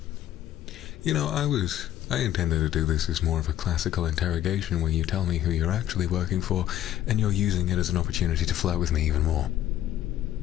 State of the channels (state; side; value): quieter; right; 12.3 dB